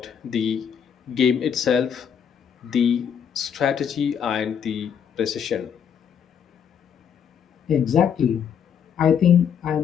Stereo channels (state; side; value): quieter; right; 7.9 dB